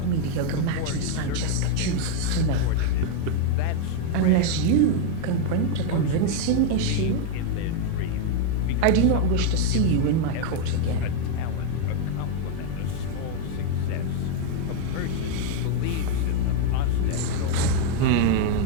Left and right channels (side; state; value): both; different; correlation 0.01